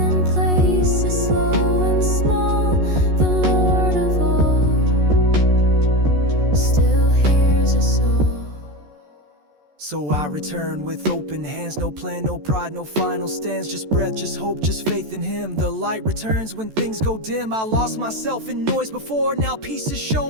places slow and small. The Lord of all still hears us all. So I return with open hands, no plan, no pride, no final stands. Just breath, just hope, just faith in him. The light returns when things go dim. I lost myself in noise before, now peace has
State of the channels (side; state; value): left; late; 14 ms